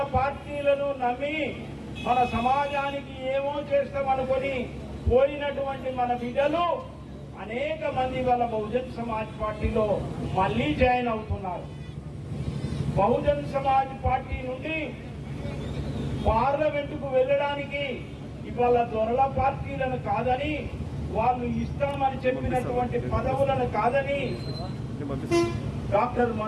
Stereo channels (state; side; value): identical; both; correlation 1.00